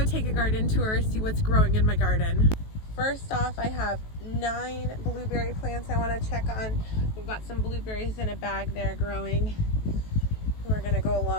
take a garden tour, see what's growing in my garden. First off, I have 9 blueberry plants I want to check on. We've got some blueberries in a bag there growing. We're going to go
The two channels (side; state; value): right; late; 18 ms